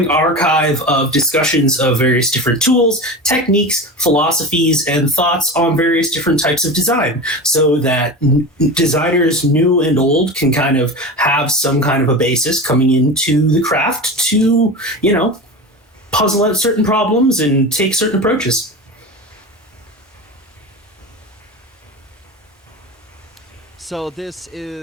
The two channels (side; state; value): both; normal; correlation 0.27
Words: archive of discussions of various different tools, techniques, philosophies, and thoughts on various different types of design, so that designers new and old can kind of have some kind of a basis coming into the craft to, puzzle out certain problems and take certain approaches. So this